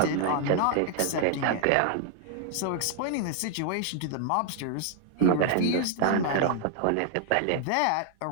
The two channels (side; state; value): both; different; correlation 0.00